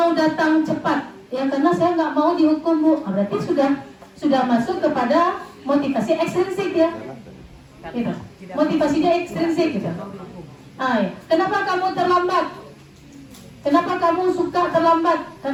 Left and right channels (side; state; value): both; identical; correlation 1.00